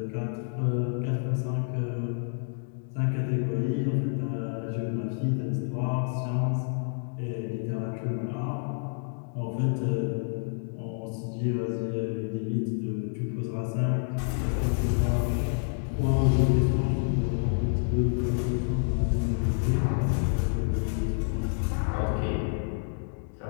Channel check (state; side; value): silent; right; 59 dB below the other